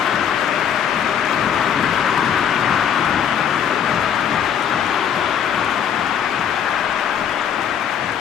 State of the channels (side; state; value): right; quieter; 8.5 dB